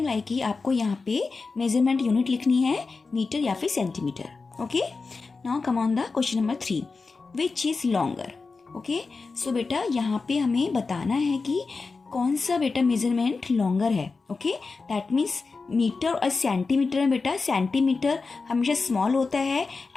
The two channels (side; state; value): right; quieter; 4.2 dB